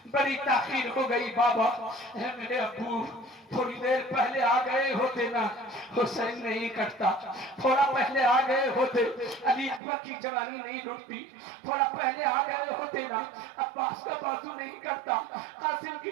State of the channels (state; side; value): drops out; left; at 9.8 s